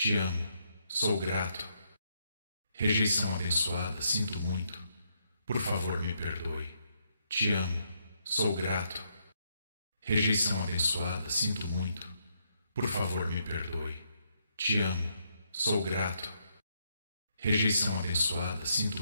amo, sou grato. Rejeição abençoada, sinto muito. Por favor, me perdoe. Te amo, sou grato. Rejeição abençoada, sinto muito. Por favor, me perdoe. Te amo, sou grato. Rejeição abençoada, sinto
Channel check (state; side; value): inverted; both; correlation -0.76